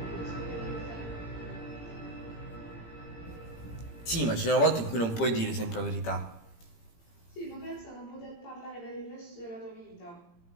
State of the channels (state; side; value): late; right; 17 ms